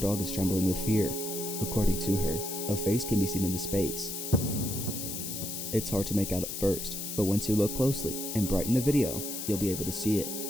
is trembling with fear. According to her, a face can be seen in the space. It's hard to make out at first, but once you look closely and brighten the video, you'll be able to see it.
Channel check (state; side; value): noise; left; hiss, 5 dB below the sound